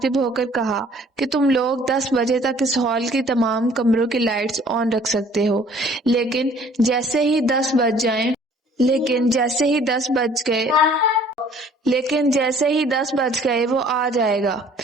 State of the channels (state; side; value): normal; both; correlation 0.55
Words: ہو کر کہا کہ تم لوگ 10 بجے تک اس ہال کی تمام کمروں کی لائٹس آن رکھ سکتے ہو، لیکن جیسے ہی 10 بج گئے وہ آ جائے گا